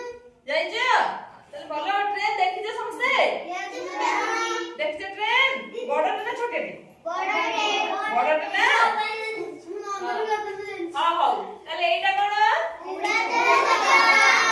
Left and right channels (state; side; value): identical; both; correlation 1.00